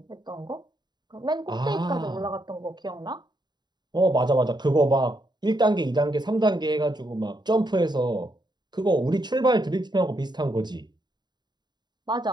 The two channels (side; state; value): left; late; 0.21 ms